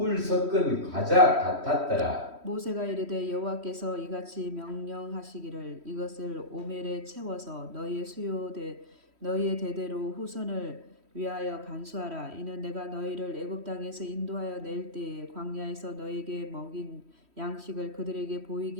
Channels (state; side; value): late; left; 3.1 ms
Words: 섞은 과자 같았더라. 모세가 이르되 여호와께서 이같이 명령하시기를 이것을 오멜에 채워서 너희의 대대로 후손을 위하여 간수하라. 이는 내가 너희를 애굽 땅에서 인도하여 낼 때에 광야에서 너희에게 먹인 양식을 그들에게